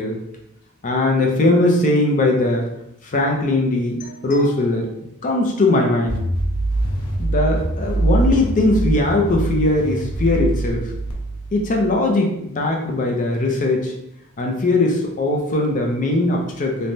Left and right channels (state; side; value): normal; both; correlation 0.49